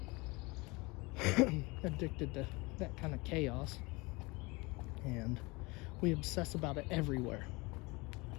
addicted to that kind of chaos, and we obsess about it everywhere.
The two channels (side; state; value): right; quieter; 25.1 dB